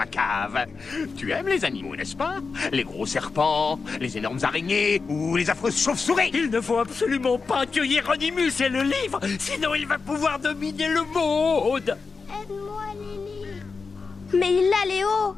cave. Tu aimes les animaux, n'est-ce pas? Les gros serpents, les énormes araignées ou les affreuses chauves-souris. Il ne faut absolument pas que Hieronymus ait le livre, sinon il va pouvoir dominer le monde. Aide-moi, Lily. Mais il l'a, Léo!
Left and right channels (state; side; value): quieter; right; 4.7 dB